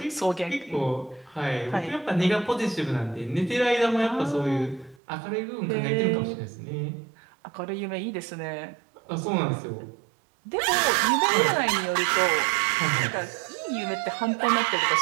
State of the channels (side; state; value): left; drops out; at 5.0 s